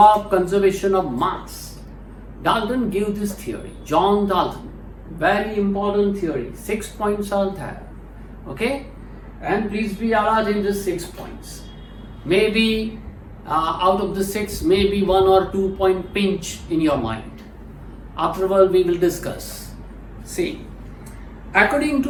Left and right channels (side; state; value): both; identical; correlation 1.00